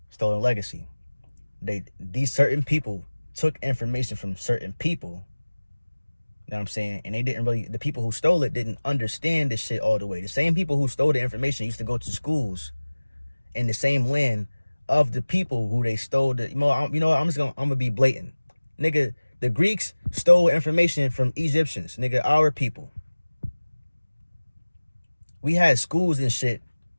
Stolen Legacy. These certain people took information from certain people. You know what I'm saying? And the people who stole it didn't understand this shit all the way. The same people who stole the information used to go to schools in the same land of the people who they stole the, I'm gonna be blatant. Nigga, the Greeks stole information from Egyptians, nigga, our people. We had schools and shit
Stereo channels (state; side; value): inverted; both; correlation -1.00